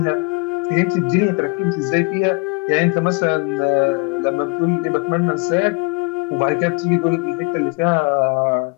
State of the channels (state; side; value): quieter; right; 28.5 dB